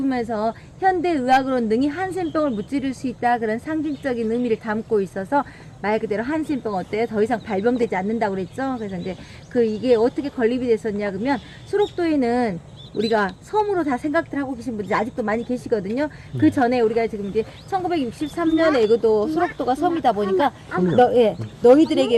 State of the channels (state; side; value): identical; both; correlation 1.00